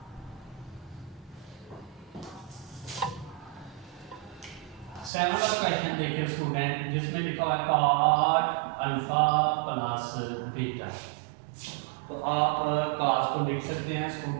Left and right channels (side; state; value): left; drops out; at 5.1 s